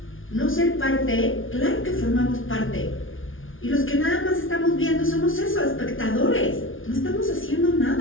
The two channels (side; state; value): right; late; 0.58 ms